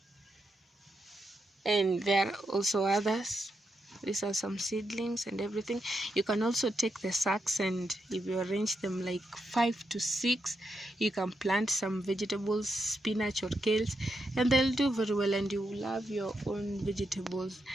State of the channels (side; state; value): both; normal; correlation 0.84